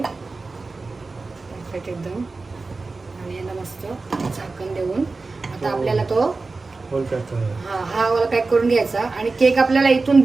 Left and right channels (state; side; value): quieter; left; 3.8 dB